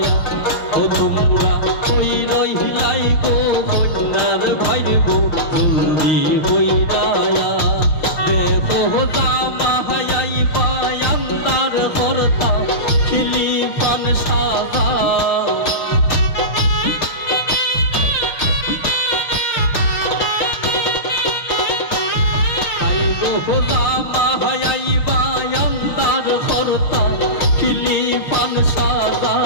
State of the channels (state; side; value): late; right; 6.4 ms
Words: ও তোমরা হই রইলাই গো কন্যার ভাইরে গো জলদি হইরায় গোজা মাহাই বায়ান্দার খরতা খিলিফান সাজা গোজা মাহাই বায়ান্দার খরতা খিলিফান সাজা